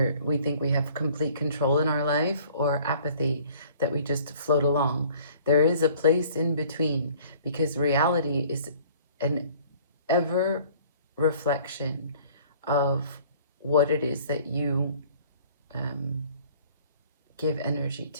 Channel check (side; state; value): both; inverted; correlation -0.53